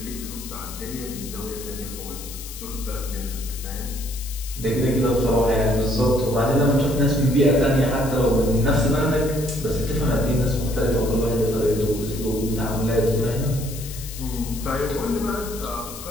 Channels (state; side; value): noise; left; hiss, 12 dB below the sound